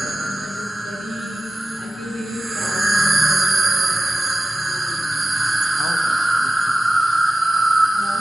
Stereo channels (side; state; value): both; normal; correlation 0.94